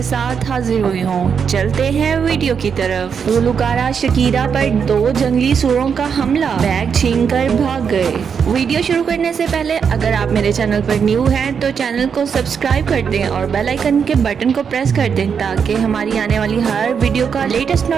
साथ हाजिर हुई हूँ। चलते हैं वीडियो की तरफ। गुलकारा शकीरा पर 2 जंगली सूरों का हमला, बैग छीनकर भाग गए। वीडियो शुरू करने से पहले अगर आप मेरे चैनल पर न्यू हैं तो चैनल को सब्सक्राइब कर दें और बेल आइकन के बटन को प्रेस कर दें ताकि हमारी आने वाली हर वीडियो का लेटेस्ट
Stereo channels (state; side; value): quieter; left; 6.7 dB